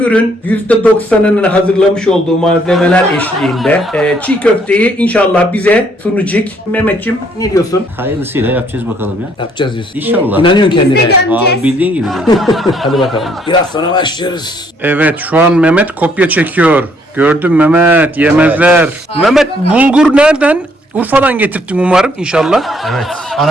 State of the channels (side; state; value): both; normal; correlation 0.67